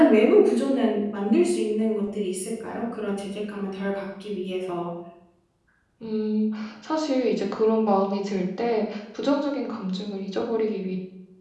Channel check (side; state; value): both; identical; correlation 1.00